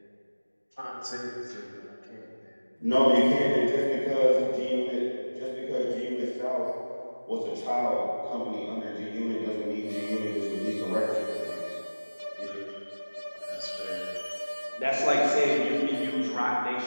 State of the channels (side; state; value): both; inverted; correlation -1.00